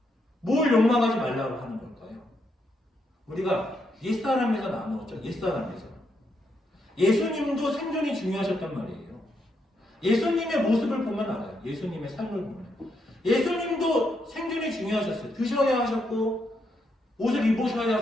뭘 욕망하지 말라고 하는 걸까요? 우리가 옛사람에서 나누었죠. 옛사람에서. 예수님도 생존이 중요하셨단 말이에요. 예수님의 모습을 보면 알아요. 예수님의 삶을 보면. 예수님도 생존이 중요하셨어요. 드셔야 하셨고, 옷을 입으셔야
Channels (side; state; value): both; normal; correlation 0.79